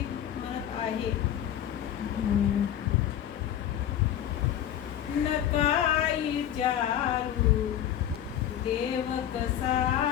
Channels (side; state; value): right; quieter; 10.7 dB